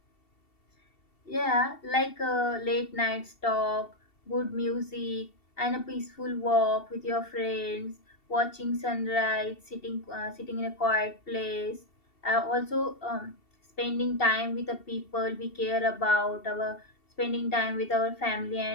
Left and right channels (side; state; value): right; late; 2.7 ms